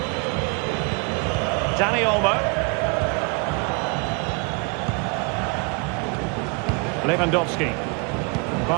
Dani Olmo. Lewandowski.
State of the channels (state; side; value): quieter; left; 33.3 dB